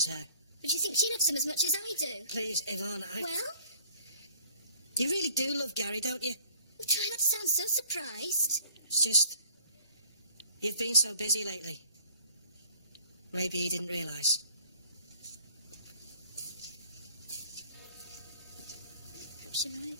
her. But do you think she loves him as much as I do? Please, Yvonne, Well? You really do love Gary, don't you? Well, try not to sound so surprised. It's just... You've been so busy lately. Maybe he didn't realise. Perhaps you're right.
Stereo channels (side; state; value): both; inverted; correlation -0.56